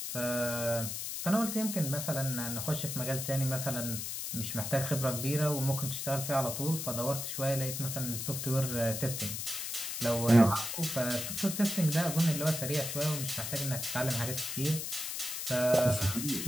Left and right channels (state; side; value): noise; left; hiss, 4 dB below the sound